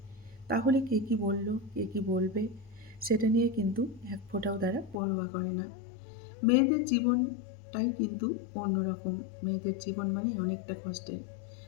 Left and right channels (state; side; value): drops out; right; at 5.0 s